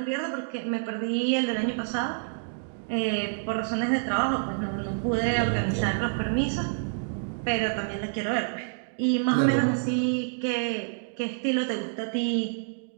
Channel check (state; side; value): silent; left; digital silence